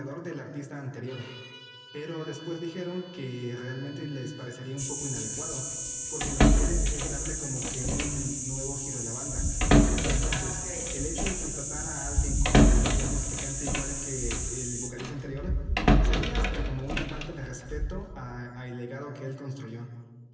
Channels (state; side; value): identical; both; correlation 1.00